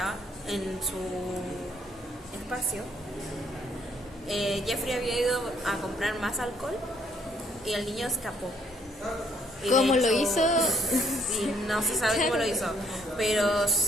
en su espacio, Jeffrey había ido a comprar más alcohol y el niño escapó. Y ¿Cómo de lo hecho, hizo? Sí, no se sabe cómo lo hizo, pero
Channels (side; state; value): both; normal; correlation 0.67